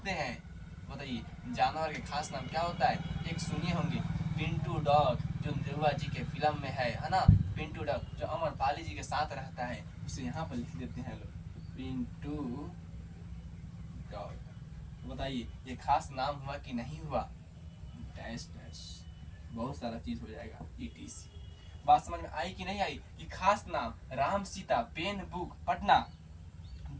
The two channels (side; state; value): both; identical; correlation 1.00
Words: हैं, बताइए जानवर के खास नाम क्या होता है। एक सुनिए होंगे पिंटू डॉग, जो देवा जी के फिल्म में है ना, पिंटू डॉग जो अमरपाली जी के साथ रहता है, उसे यहाँ पर लिख देते हैं लोग, पिंटू डॉग। बताइए ये खास नाम हुआ कि नहीं हुआ, डैश डैश, बहुत सारा चीज हो जाएगा, ETC। बात समझ में आई कि नहीं आई, कि खास नाम Ram, Sita, pen, book, Patna,